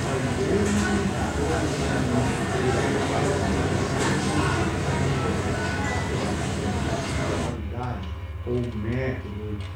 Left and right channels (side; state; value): both; identical; correlation 1.00